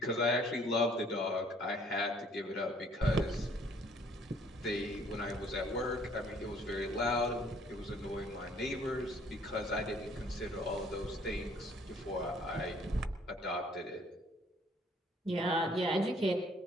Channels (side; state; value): both; normal; correlation 0.60